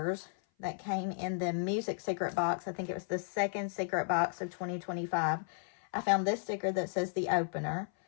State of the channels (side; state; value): right; silent; 55 dB below the other